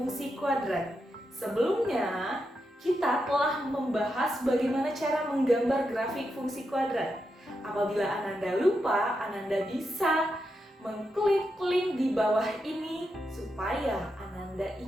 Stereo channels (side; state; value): both; normal; correlation 0.85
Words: kuadrat. Sebelumnya kita telah membahas bagaimana cara menggambar grafik fungsi kuadrat. Apabila Ananda lupa, Ananda bisa mengklik link di bawah ini supaya Ananda